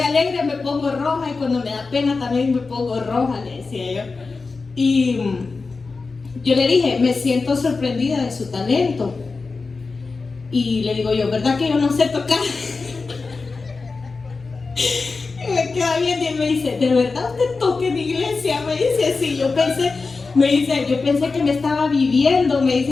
me pongo roja y cuando me da pena también me pongo roja, le decía yo. Y yo le dije, me siento sorprendida de su talento. Y le digo yo, ¿verdad que yo no sé tocar? Y me queda bien y me dice, ¿de verdad usted toca en iglesia? Me dice, sí, yo pensé que me estaba viviendo, me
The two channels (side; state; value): right; quieter; 4.2 dB